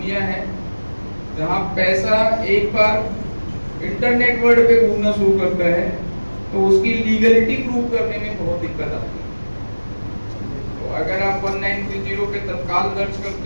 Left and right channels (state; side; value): inverted; both; correlation -1.00